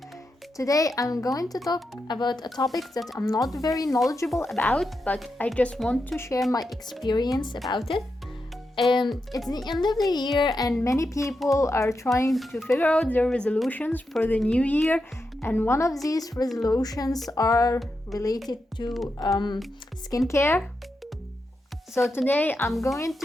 Today I'm going to talk about a topic that I'm not very knowledgeable about, but I just want to share my experience about it. It's the end of the year and many people are trying to figure out their resolutions for the new year, and one of these resolutions are related to skincare. So today I'm going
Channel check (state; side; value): normal; both; correlation 0.87